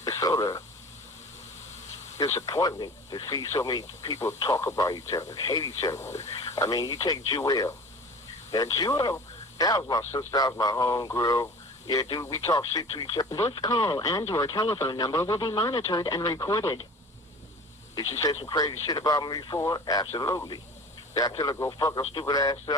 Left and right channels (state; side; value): normal; both; correlation 0.39